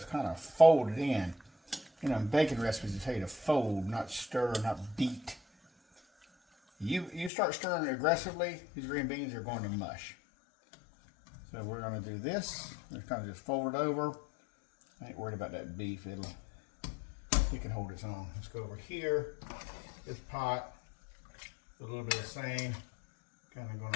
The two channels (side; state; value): right; drops out; at 7.3 s